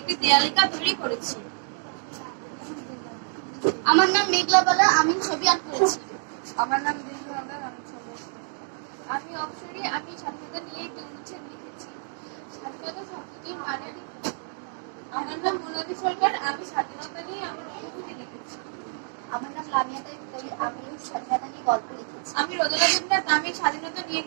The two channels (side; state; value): left; silent; digital silence